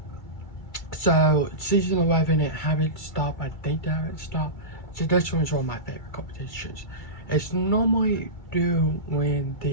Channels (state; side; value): late; right; 2.3 ms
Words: So season 11 it haven't stopped. I think they haven't stopped. So this one's one of my favorite competitions. It's normally due when